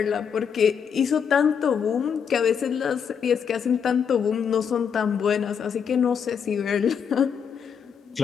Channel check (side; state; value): right; quieter; 7.2 dB